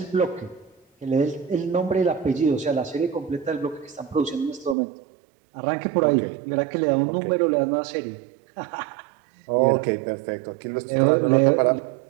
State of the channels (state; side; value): drops out; left; at 4.8 s